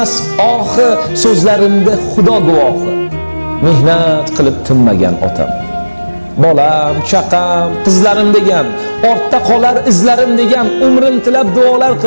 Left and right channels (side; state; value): both; inverted; correlation -1.00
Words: ohi, so'zlarimda xudo guvohi, mehnat qilib tinmagan otam. Bolam, chaqam, qizlarim degan, ortda qolar izlarim degan, umrim tilab duolar